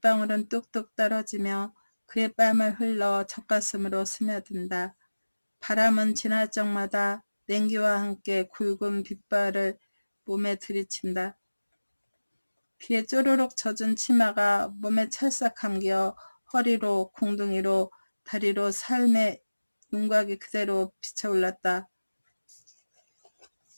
뚝뚝 떨어지며 그의 뺨을 흘러 젖가슴으로 스며든다. 바람은 지날 적마다 냉기와 함께 굵은 빗발을 몸에 들이친다. 비에 쪼르륵 젖은 치마가 몸에 찰싹 감겨 허리로 공둥이로 다리로 삶의 윤곽이 그대로 비쳐올랐다.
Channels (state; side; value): inverted; both; correlation -1.00